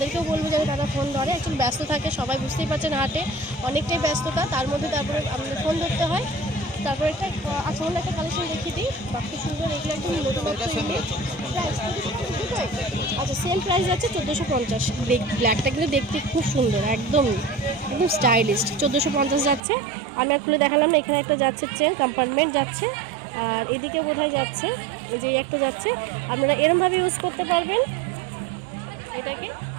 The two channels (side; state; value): left; drops out; at 19.6 s